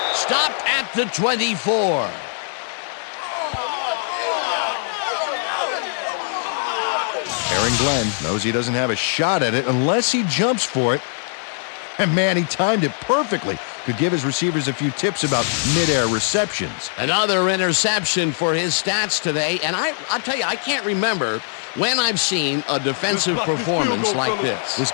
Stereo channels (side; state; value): right; silent; 55 dB below the other